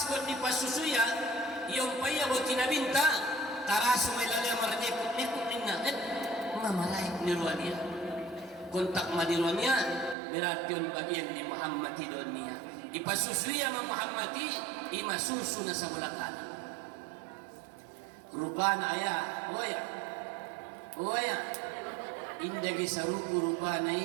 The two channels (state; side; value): drops out; left; at 10.2 s